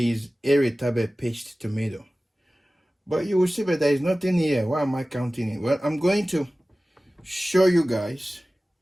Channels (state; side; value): normal; both; correlation 0.97